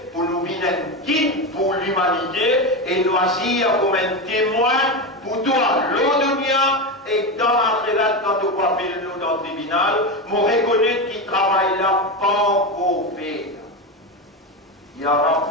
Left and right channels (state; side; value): normal; both; correlation 0.16